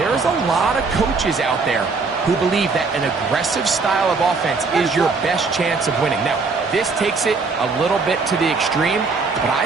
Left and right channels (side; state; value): left; quieter; 4.3 dB